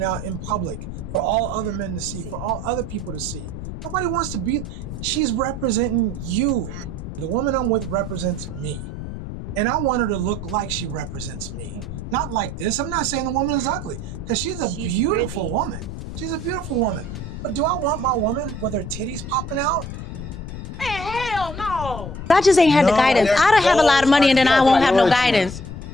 out in public for all other men to see, for all other people to see. Nobody wants to be. She's representing you. The woman I'm with represents me. And I want her to look like she represents me. Not like this. I'm not saying the woman is ugly, because she's a beautiful pretty. woman. She's a beautiful woman. But do I want my woman with her titties popping out? Man, hell no. I just ain't had the guidance. their I don't have a lot of money and then I won't have no guidance.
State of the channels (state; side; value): noise; left; rumble, 8 dB below the sound